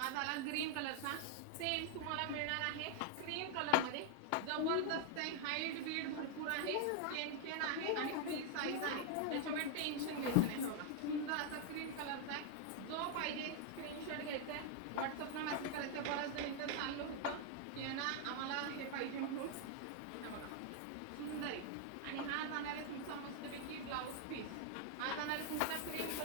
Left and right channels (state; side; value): different; both; correlation 0.00